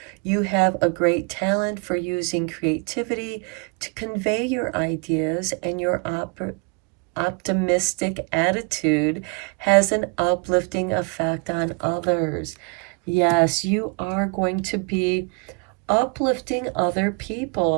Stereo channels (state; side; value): quieter; left; 32.4 dB